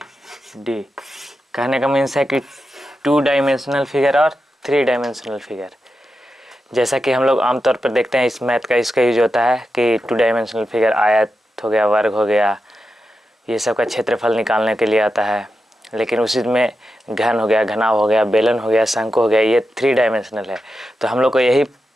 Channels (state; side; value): normal; both; correlation 0.89